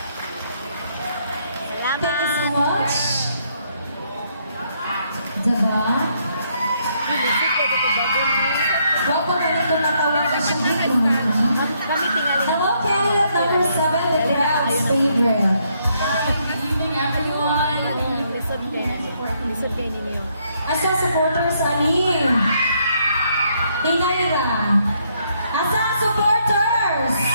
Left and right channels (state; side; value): inverted; both; correlation -0.73